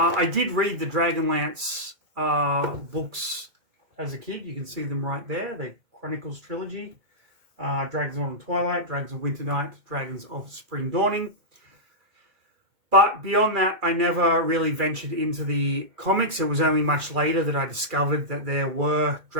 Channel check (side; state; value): left; late; 2.4 ms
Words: did read the Dragonlance books as a kid. You can see them right there. The Chronicles trilogy. Dragons of Autumn Twilight, Dragons of Winter Night, Dragons of Spring Dawning. But beyond that, I never really ventured into the comics. It was only much later that I discovered that there were